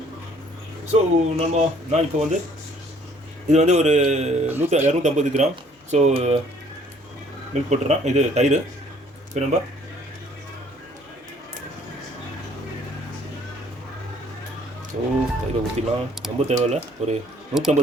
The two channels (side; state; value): both; normal; correlation 0.59